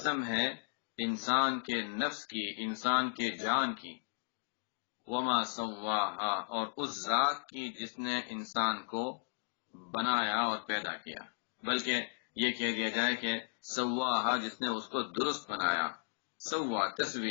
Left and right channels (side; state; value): right; silent; digital silence